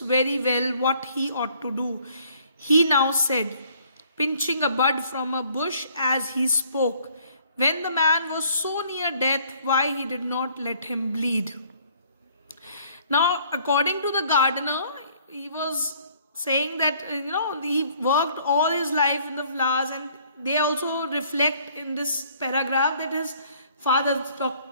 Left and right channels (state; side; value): inverted; both; correlation -0.60